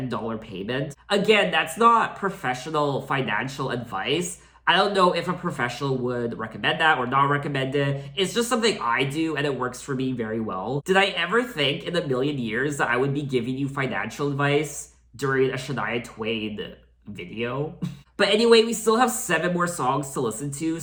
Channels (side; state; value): both; identical; correlation 1.00